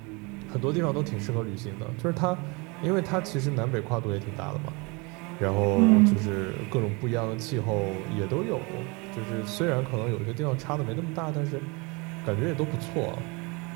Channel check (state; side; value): quieter; left; 28.3 dB